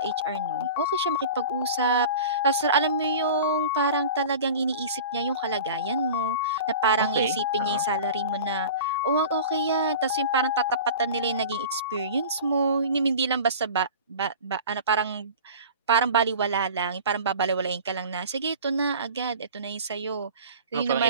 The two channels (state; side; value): inverted; both; correlation -0.37